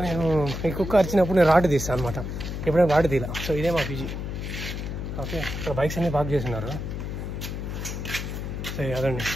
నేను ఈ కుక్క అరిచినప్పుడు నేను రాడ్ తీస్తాను అనమాట, ఎప్పుడైనా రాడ్ తీలా. సో ఇదే మా పీజీ. ఓకే, ఇక్కడ బైక్స్ అన్నీ పార్క్ చేస్తున్నారు. సో అదండి,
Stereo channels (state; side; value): noise; left; hum, 5 dB below the sound